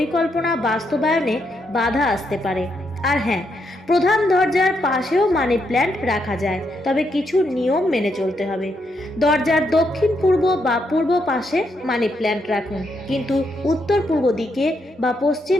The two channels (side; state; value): both; normal; correlation 0.79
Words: বাস্তবায়নে বাধা আসতে পারে। আর হ্যাঁ, প্রধান দরজার পাশেও মানি প্ল্যান্ট রাখা যায়, তবে কিছু নিয়ম মেনে চলতে হবে। দরজার দক্ষিণ পূর্ব বা পূর্ব পাশে মানি প্ল্যান্ট রাখুন, কিন্তু উত্তর পূর্ব দিকে বা